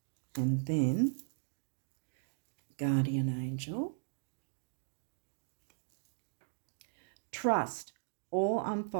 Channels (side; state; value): left; silent; digital silence